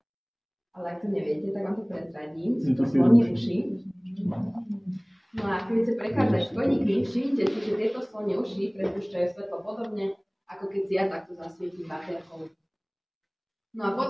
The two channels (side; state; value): both; identical; correlation 1.00